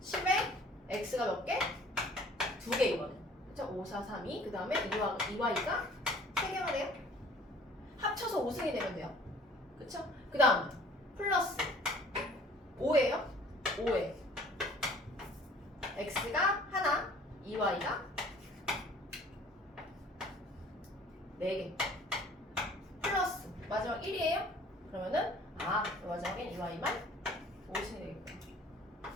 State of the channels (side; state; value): both; normal; correlation 0.52